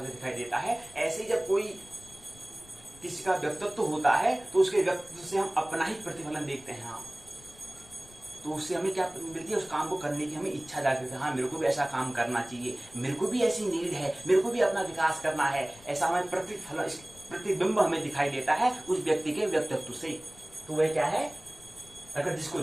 दिखाई देता है। ऐसे जब कोई किसी का व्यक्तित्व होता है, तो उसके व्यक्तित्व से हम अपना ही प्रतिफलन देखते हैं। हाँ, तो उससे हमें क्या मिलती है, उस काम को करने की हमें इच्छा जागृत है। हाँ, मेरे को भी ऐसा काम करना चाहिए, मेरे को भी ऐसी नीड है, मेरे को भी अपना विकास करना है, ऐसा हमें प्रतिबिंब हमें दिखाई देता है उस व्यक्ति के व्यक्तित्व से। तो वह क्या है, अगर जिसको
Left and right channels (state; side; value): noise; left; rumble, 23 dB below the sound